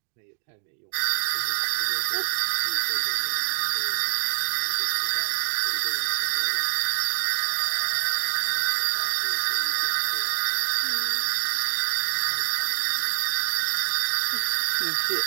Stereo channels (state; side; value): silent; left; digital silence